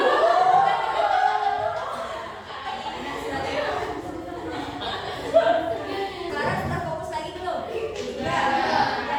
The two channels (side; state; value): both; identical; correlation 1.00